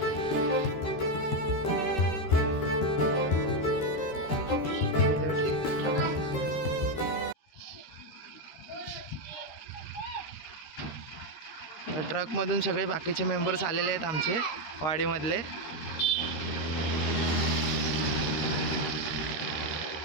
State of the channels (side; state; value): right; late; 13 ms